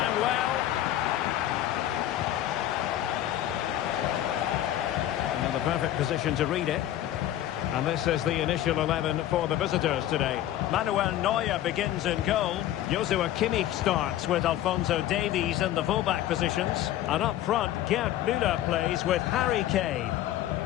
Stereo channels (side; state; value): right; quieter; 12.9 dB